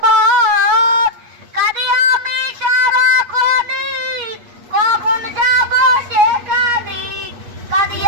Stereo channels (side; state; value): left; late; 8.4 ms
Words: কাঁদি আমি সারাক্ষণই, কখন যাব সেখানে? কাঁদি